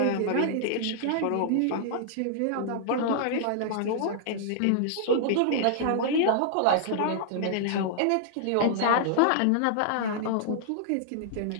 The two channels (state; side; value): different; both; correlation -0.01